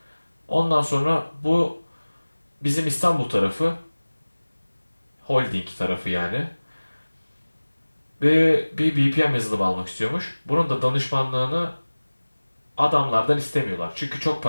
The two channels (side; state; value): both; inverted; correlation -1.00